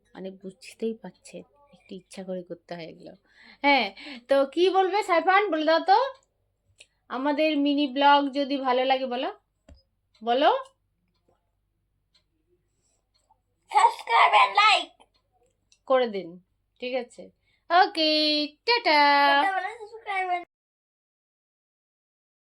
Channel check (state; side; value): identical; both; correlation 1.00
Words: মানে বুঝতেই পারছেন একটু ইচ্ছা করে করতে হয় এগুলো। হ্যাঁ, তো কি বলবে সাইফান, বলে দাও তো। আমাদের মিনি ব্লগ যদি ভালো লাগে বলো বলো সাবস্ক্রাইব এন্ড লাইক করে দিন। ঠিক আছে, ওকে, টাটা। সাবস্ক্রাইব